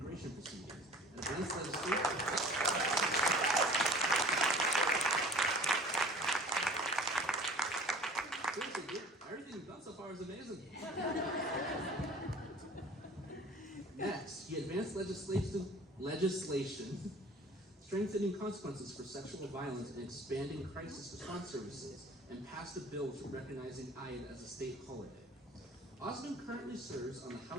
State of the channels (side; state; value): both; normal; correlation 0.46